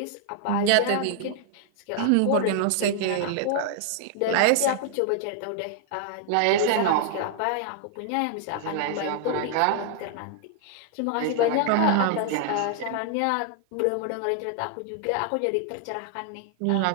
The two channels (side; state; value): both; different; correlation 0.00